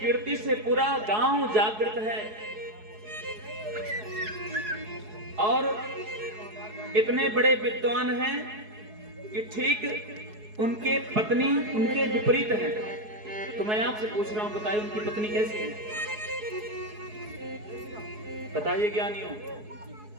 से पूरा गांव जागृत है। और इतने बड़े विद्वान हैं कि ठीक उनके पत्नी उनके विपरीत हैं। तो मैं आपसे पूछ रहा हूं, बताइए उनकी पत्नी कैसी है? बताइए ज्ञानियों,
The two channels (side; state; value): left; late; 4.7 ms